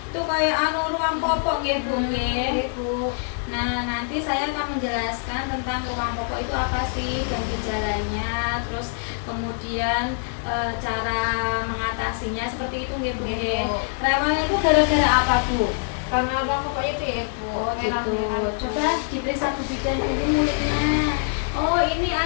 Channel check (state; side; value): silent; right; digital silence